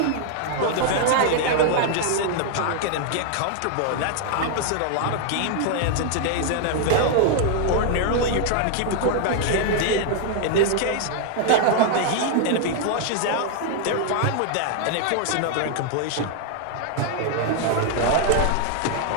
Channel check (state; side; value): different; both; correlation 0.00